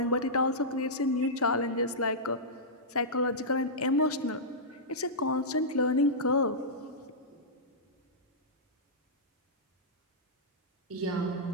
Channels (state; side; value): normal; both; correlation -0.13